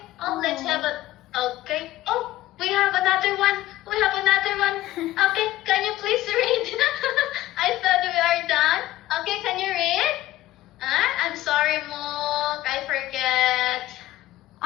Oh, let's have a. Okay. Oh, we have another one. We have another one. Okay, can you please read? I thought we are done. Okay, can you read? I'm sorry, Mook. I forget.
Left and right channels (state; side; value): quieter; right; 15.5 dB